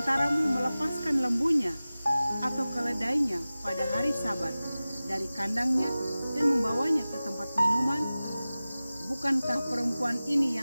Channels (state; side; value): inverted; both; correlation -0.97